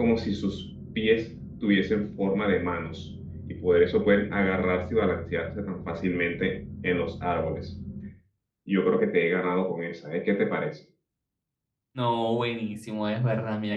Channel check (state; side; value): identical; both; correlation 1.00